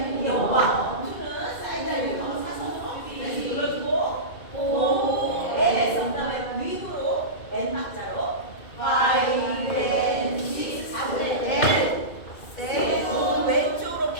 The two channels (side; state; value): right; late; 2.3 ms